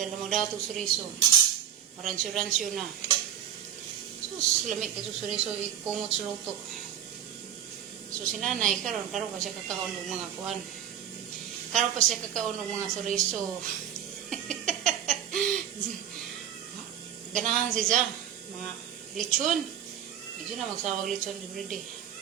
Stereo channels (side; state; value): left; quieter; 9.7 dB